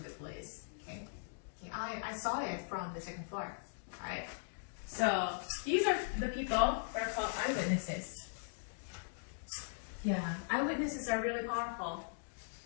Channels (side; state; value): right; silent; digital silence